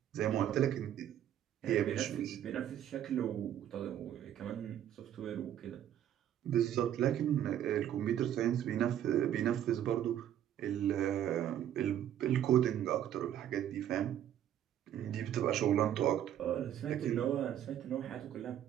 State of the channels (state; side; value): quieter; left; 10.8 dB